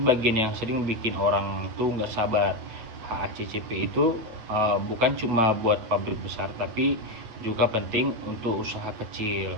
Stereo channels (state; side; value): late; left; 8.7 ms